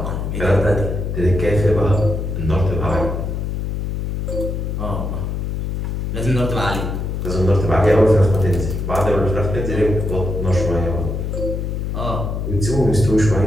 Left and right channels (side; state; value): left; noise; hum, 2 dB below the sound